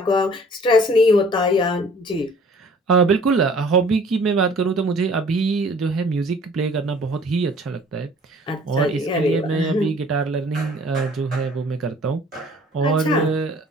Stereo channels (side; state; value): both; normal; correlation 0.53